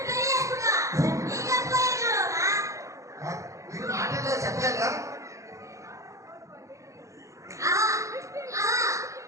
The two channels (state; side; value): late; left; 0.15 ms